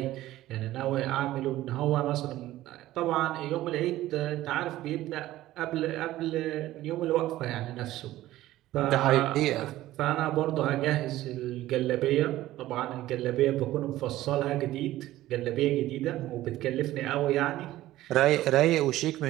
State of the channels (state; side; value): quieter; left; 15.3 dB